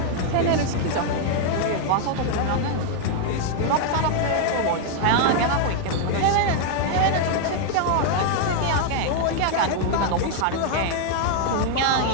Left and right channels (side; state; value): both; different; correlation 0.00